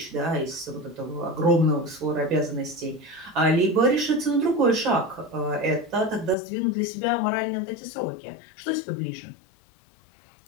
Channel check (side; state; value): right; drops out; at 6.4 s